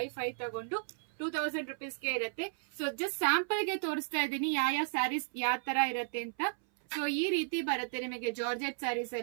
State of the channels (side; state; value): left; silent; 55 dB below the other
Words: 5 ತಗೊಂಡು 2000 ರುಪೀಸ್ಗೆ ಇರುತ್ತೆ. ಸೊ ಜಸ್ಟ್ ಸ್ಯಾಂಪಲ್ ಗೆ ತೋರಿಸ್ತಾ ಇದ್ದೀನಿ ಯಾವ ಸ್ಯಾರೀಸ್ ಯಾವ ತರ ಇರುತ್ತೆ ಅಂತ. ಸೊ ಈ ರೀತಿ ಬರುತ್ತೆ ನಿಮಗೆ ಜಾರ್ಜೆಟ್ ಸ್ಯಾರೀಸ್